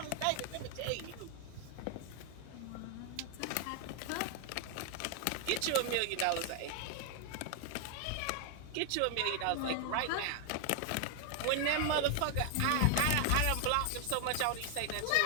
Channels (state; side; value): different; both; correlation 0.00